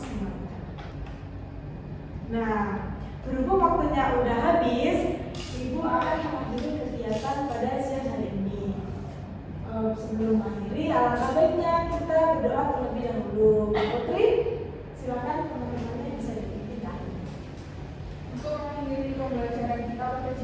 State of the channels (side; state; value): both; identical; correlation 1.00